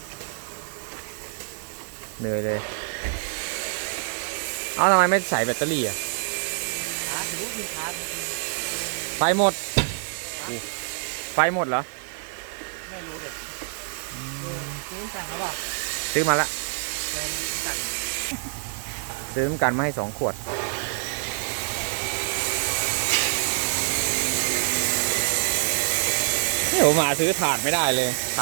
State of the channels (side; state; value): left; silent; 61 dB below the other